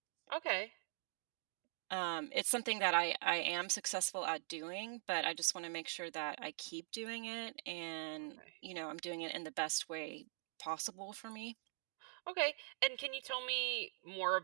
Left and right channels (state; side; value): silent; left; digital silence